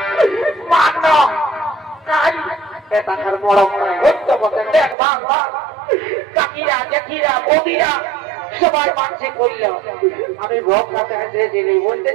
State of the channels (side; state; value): left; drops out; at 5.0 s